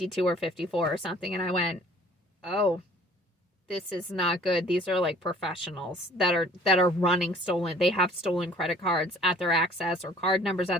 or 54 or something. And I went, oh, this is not good. These are professionals that are running stolen. They have stolen credit cards at their access or card numbers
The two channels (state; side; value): normal; both; correlation 0.54